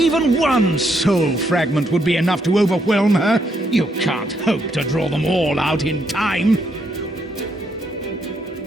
one soul fragment would be enough to overwhelm her. You can't hope to draw them all out in time.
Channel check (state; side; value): normal; both; correlation 0.75